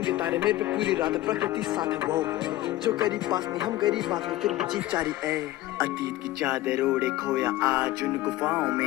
तारे मेरे पे पूरी रात प्रकृति साथ है वो जो करीब पास नहीं हम गरीब बात में फिर भी जीत चारी ए अतीत की चादर ओढ़े खोया आज उन गुफाओं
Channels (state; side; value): quieter; right; 16.1 dB